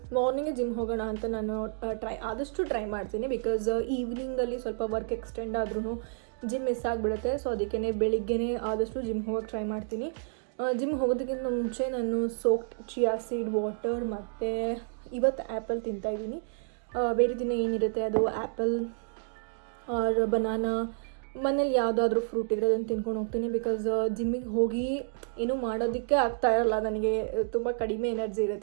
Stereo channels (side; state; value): left; silent; digital silence